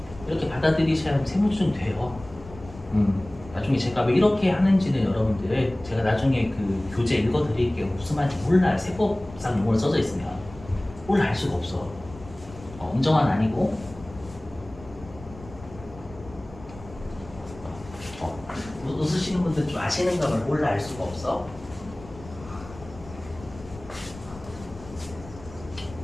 이렇게 받아들이셔야 세무조정이 돼요. 나중에 제가 왜 이렇게 하는지는 여러분들 제가 나중에 그 교재 읽어드릴게요. 무슨 말인지 몰라요. 세법상 용어로 써져 있으면 몰라 알 수가 없어. 엄정한 아니고 웃으시는 분들 좀 아시는가 봐. 몰라 알 수가 없어.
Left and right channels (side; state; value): left; noise; rumble, 18 dB below the sound